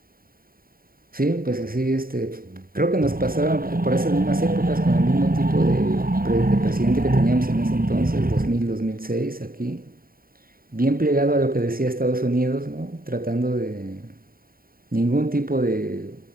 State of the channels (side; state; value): left; late; 0.43 ms